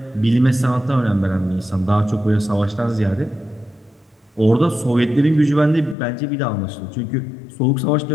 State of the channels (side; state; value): right; drops out; at 6.0 s